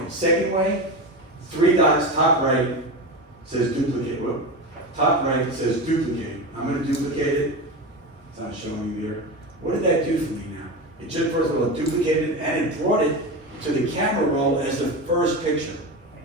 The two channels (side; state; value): both; normal; correlation 0.22